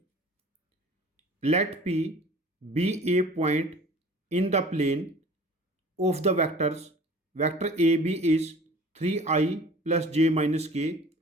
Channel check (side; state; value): both; normal; correlation 0.46